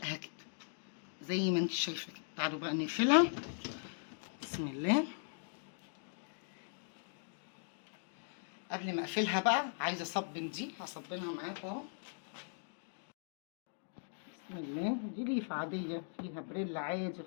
كده زي ما انت شايفه كده. تعالوا بقى نقفلها. بسم الله. قبل ما اقفلها بقى عايزه اصبن دي، هصبنها معاكم اهو. بسم الله. دي ليفه عاديه فيها بريل عادي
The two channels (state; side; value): silent; right; digital silence